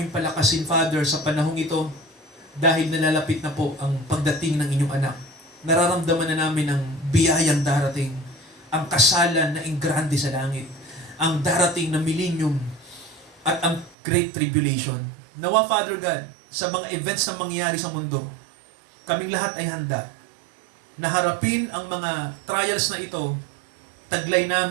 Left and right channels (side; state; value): left; drops out; at 14.0 s